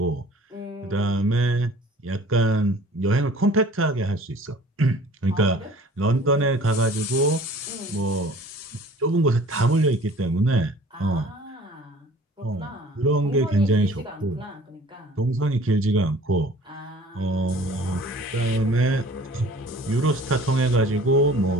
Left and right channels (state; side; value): normal; both; correlation 0.49